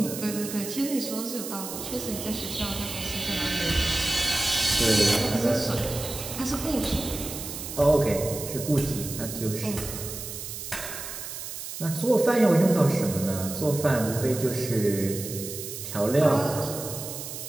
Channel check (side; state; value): right; noise; hiss, 8 dB below the sound